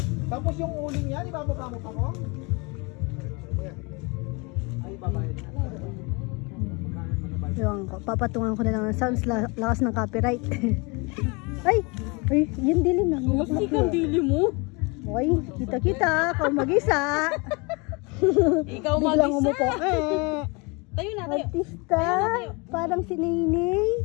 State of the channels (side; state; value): right; quieter; 29.0 dB